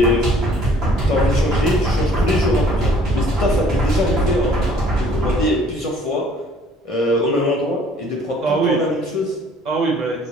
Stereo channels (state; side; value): normal; both; correlation 0.57